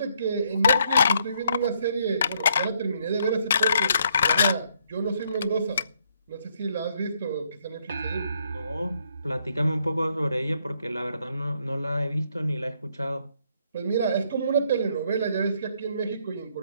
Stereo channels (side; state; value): both; inverted; correlation -0.71